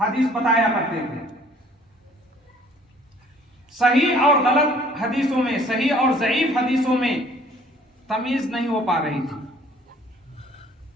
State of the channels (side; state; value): both; normal; correlation 0.56